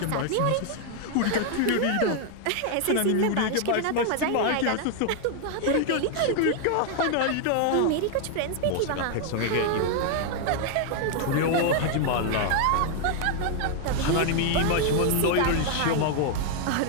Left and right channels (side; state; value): both; different; correlation 0.00